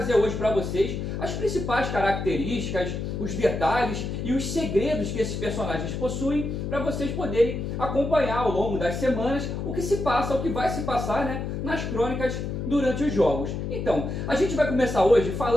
hoje para vocês as principais características, os detalhes e os segredos que esses personagens possuem, para vocês poderem acompanhar ao longo das semanas o que se passa, o que vai se passar, né, nas crônicas durante os jogos. Então, a gente vai começar hoje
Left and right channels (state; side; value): noise; left; hum, 4 dB below the sound